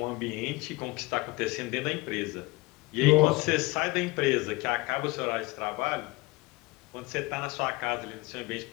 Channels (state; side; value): quieter; right; 23.2 dB